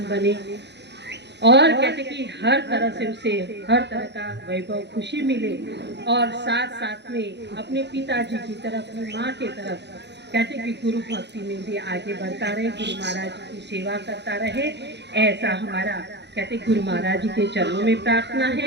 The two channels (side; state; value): left; late; 0.50 ms